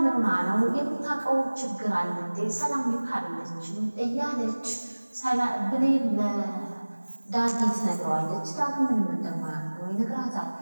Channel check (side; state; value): both; inverted; correlation -1.00